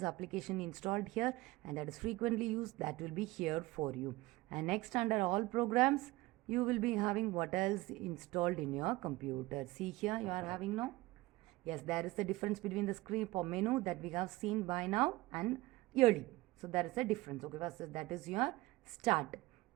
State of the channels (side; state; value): left; quieter; 19.8 dB